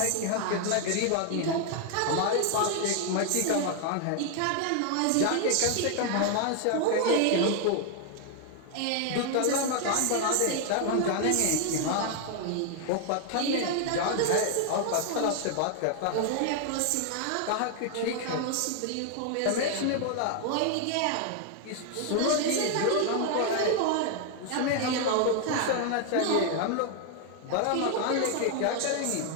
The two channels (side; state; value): both; different; correlation 0.00